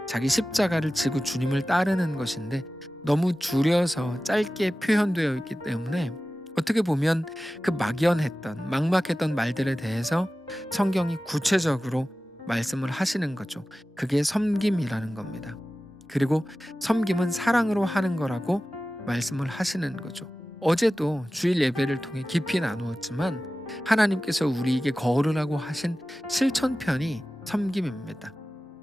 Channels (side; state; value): both; normal; correlation 0.96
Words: 자기 십자가를 지고 주님을 따르는 것인데 너무 줄여서 짧게 표현되어 있기 때문에 어떻게 보면 그 막연했던 막막했던 말들에 대해서 성경이 구체적으로 말씀을 하시는 거죠. 그게 섬김이라는 겁니다. 그리고 섬김은 사랑으로 하는 거라고 말씀을 하시는 거죠. 어제도 주일 예배를 통해 깊이 나누었지만 하나님께서 우리에게 거르라고 하신 실천편이 섬김입니다.